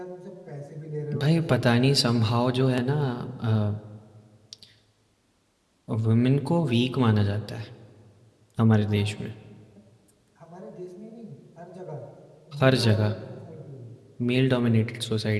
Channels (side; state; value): both; identical; correlation 1.00